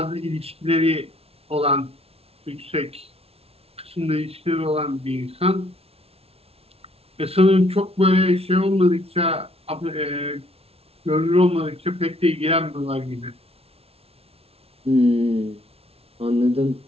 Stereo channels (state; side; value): late; left; 0.29 ms